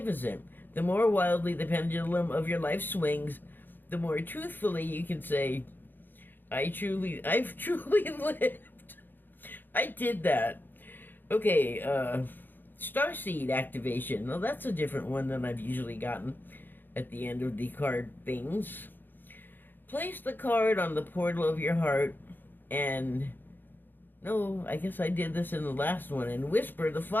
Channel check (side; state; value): right; late; 0.092 ms